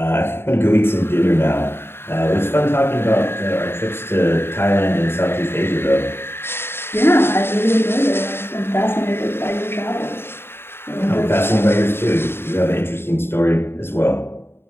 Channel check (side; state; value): right; late; 0.11 ms